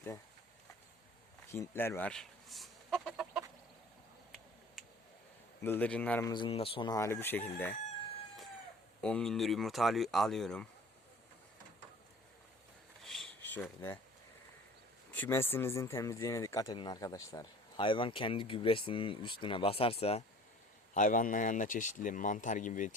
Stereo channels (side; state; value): both; normal; correlation 0.46